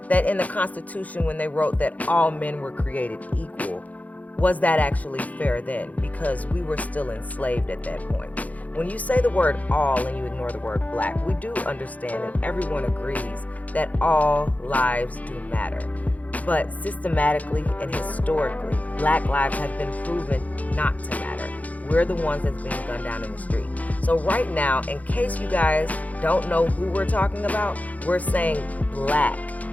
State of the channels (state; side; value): late; right; 0.074 ms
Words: that in the Constitution, when they wrote that all men were created equal, was that actually fair then? Because we were still enslaved at that point. When you say the word all and you ignore the word black, we do understand and everyone agrees that all lives do matter. But systematically and historically, Black lives have been proven not to matter. We're the ones that's being gunned down in the street. So right now, in case you guys don't know who we're talking about, we're saying Black